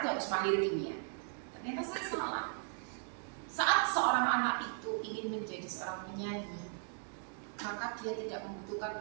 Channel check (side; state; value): left; silent; 53 dB below the other